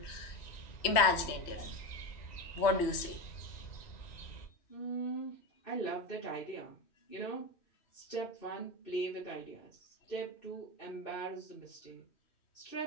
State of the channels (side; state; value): right; late; 3.1 ms